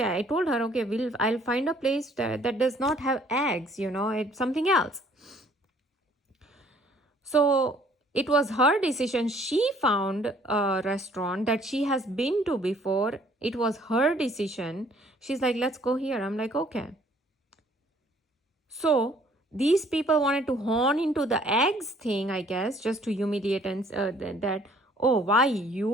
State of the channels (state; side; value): normal; both; correlation 0.60